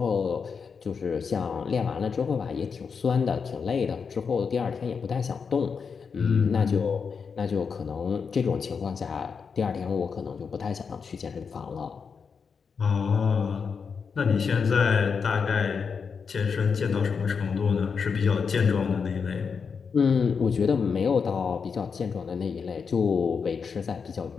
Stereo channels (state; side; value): quieter; right; 5.8 dB